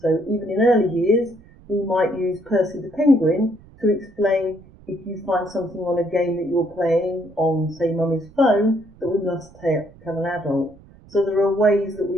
even in early years, we might use Percy the Penguin to explain if you find something on a game that you're playing on, say, mummy's phone, that we must tell an adult. So there are ways that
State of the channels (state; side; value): noise; right; rumble, 24 dB below the sound